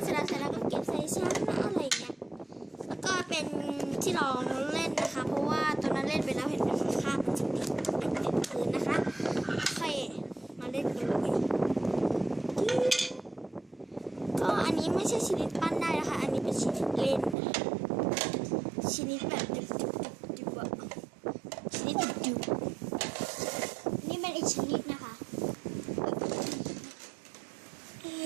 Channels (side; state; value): left; drops out; at 17.4 s